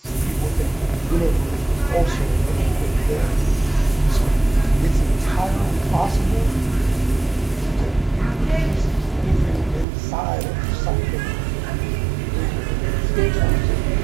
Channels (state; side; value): drops out; left; at 9.9 s